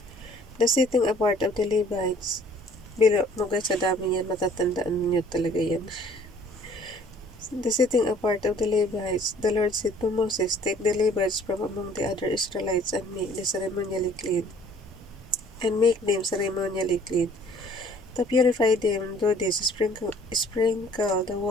The setting apart of the Levites. Bilo mo guys, sa dami yan, matatandaan nyo talaga yan. The setting apart of the Levites. The Lord said to Moses, take the Levites from among the other Israelites and make them ceremonially clean. To purify them, do this, sprinkle the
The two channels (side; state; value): both; normal; correlation 0.55